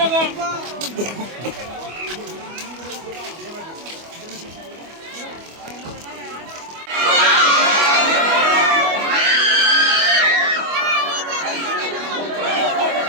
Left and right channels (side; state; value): left; late; 25 ms